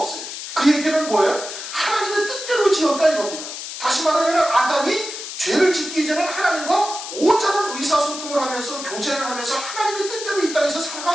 그 얘기는 뭐예요? 하나님의 뜻대로 지었다, 이겁니다. 다시 말하면 아담이 죄를 짓기 전에 하나님과 온전한 의사소통을 하면서 교제를 하면서 하나님의 뜻대로 이 땅에서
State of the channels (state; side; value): noise; left; hiss, 8 dB below the sound